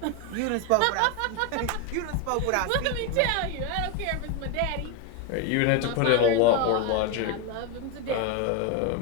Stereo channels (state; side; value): different; both; correlation 0.01